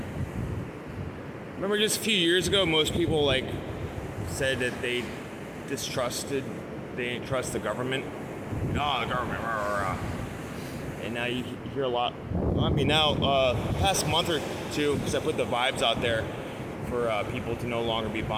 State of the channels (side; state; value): both; identical; correlation 1.00